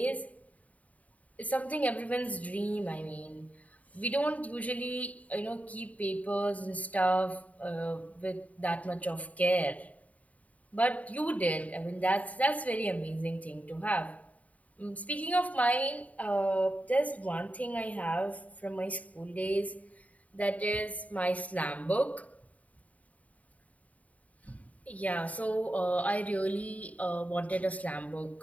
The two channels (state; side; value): late; right; 0.070 ms